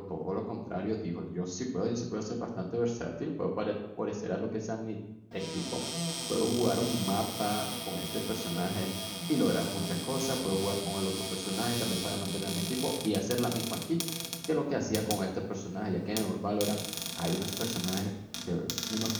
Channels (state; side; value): identical; both; correlation 1.00